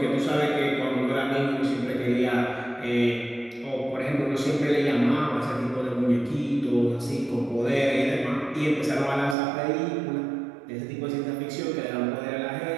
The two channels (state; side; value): drops out; left; at 9.3 s